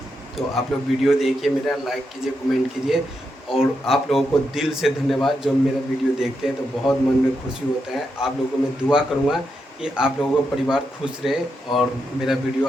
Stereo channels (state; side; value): normal; both; correlation 0.84